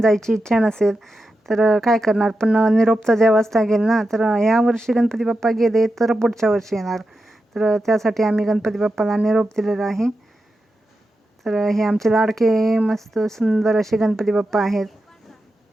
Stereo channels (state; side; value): normal; both; correlation 0.90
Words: जायची इच्छा नसेल, तर काय करणार, पण निरोप तर द्यावाच लागेल ना. तर ह्या वर्षी गणपती बाप्पा गेले तर पुढच्या वर्षी येणार, तर त्यासाठी आम्ही गणपती बाप्पाला निरोप दिलेला आहे. तर हे आमचे लाडके मस्त सुंदर असे गणपती बाप्पा आहेत.